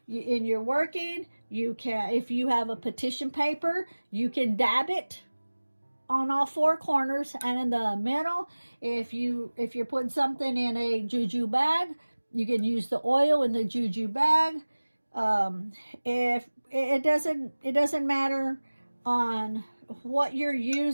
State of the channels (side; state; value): both; inverted; correlation -1.00